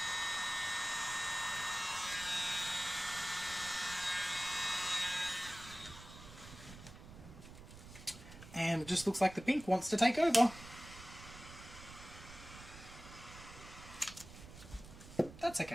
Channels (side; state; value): right; noise; rumble, 16 dB below the sound